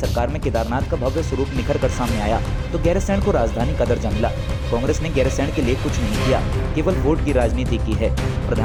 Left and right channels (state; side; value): identical; both; correlation 1.00